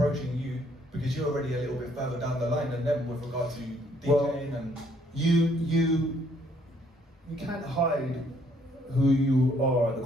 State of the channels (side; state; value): both; normal; correlation 0.66